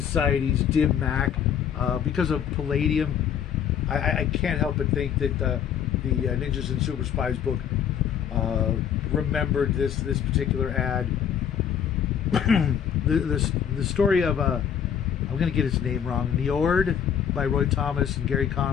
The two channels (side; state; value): right; quieter; 8.5 dB